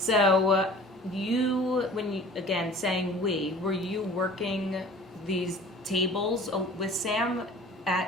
you, when you, again, saying we, were you working these tables with Sam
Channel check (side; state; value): both; normal; correlation 0.46